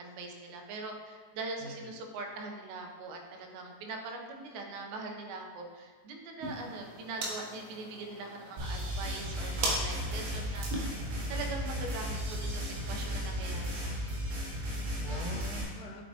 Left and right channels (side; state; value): left; late; 19 ms